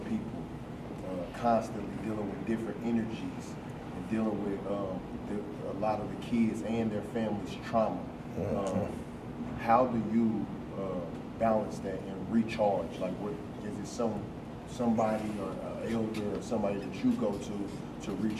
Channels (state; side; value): identical; both; correlation 1.00